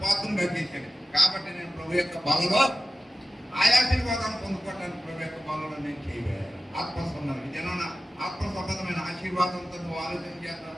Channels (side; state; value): both; normal; correlation 0.94